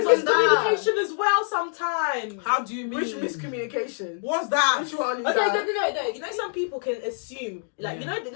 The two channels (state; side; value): silent; right; 62 dB below the other